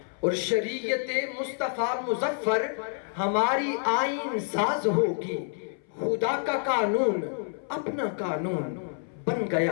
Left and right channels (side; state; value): right; silent; 59 dB below the other